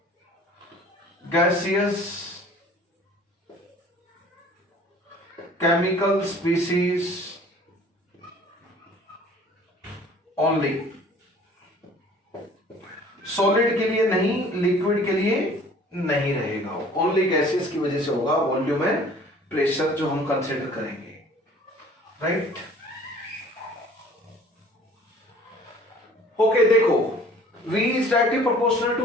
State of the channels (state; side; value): normal; both; correlation 0.51